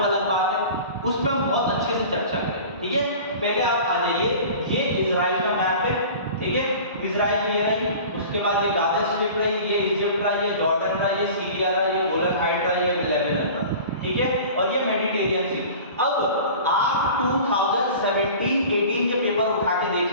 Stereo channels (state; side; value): inverted; both; correlation -0.40